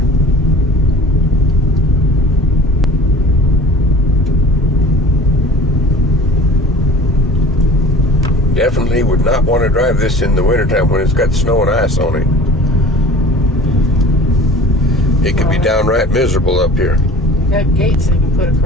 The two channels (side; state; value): both; normal; correlation 0.44